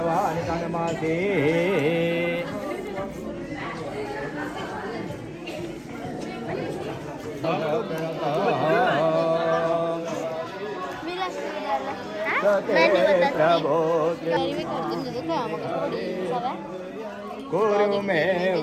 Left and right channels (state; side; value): identical; both; correlation 1.00